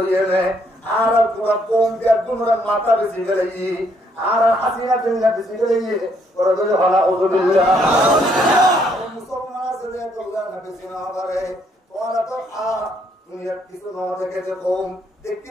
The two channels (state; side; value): normal; both; correlation 0.70